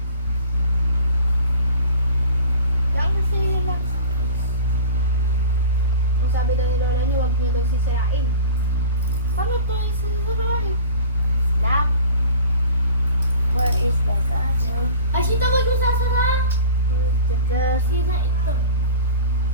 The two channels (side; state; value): both; inverted; correlation -0.39